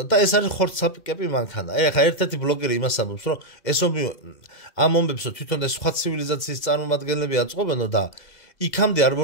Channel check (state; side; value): late; right; 2.0 ms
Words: და ეს არის ხორცსაპიკები მანქანა. აი ახლა ერთ-ერთი ბლოგერი იმას ამბობს, რომ ეს ომი ამ ომებსო თვითონ ეს სხვა ცივილიზაციის წარმომადგენლები აწყობენო და იქამდე არ